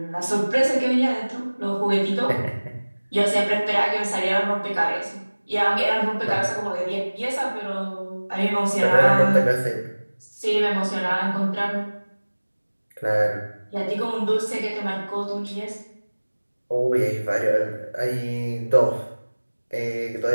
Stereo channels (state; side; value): inverted; both; correlation -1.00